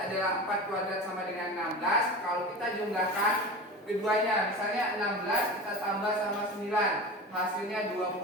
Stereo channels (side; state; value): both; normal; correlation 0.31